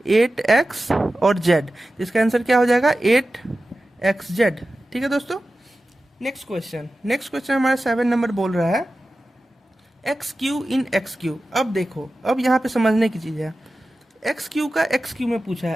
8x और z। इसका आंसर क्या हो जाएगा, 8xz, ठीक है दोस्तों। नेक्स्ट क्वेश्चन हमारा 7 नंबर बोल रहा है xq इन xq। अब देखो, अब यहाँ पे समझने की चीज़ है, xq का xq में पूछा है।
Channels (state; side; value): normal; both; correlation 0.94